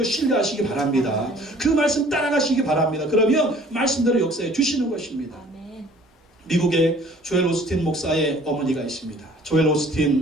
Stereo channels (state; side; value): normal; both; correlation 0.53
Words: 신뢰하시기 바랍니다. 그 말씀 따라가시기 바랍니다. 그러면 말씀대로 역사해 주시는 것입니다. 미국에 조엘 오스틴 목사의 어머니가 있습니다. 조엘